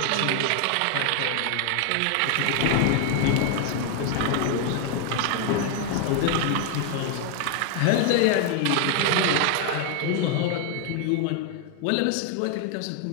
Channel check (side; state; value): both; different; correlation 0.00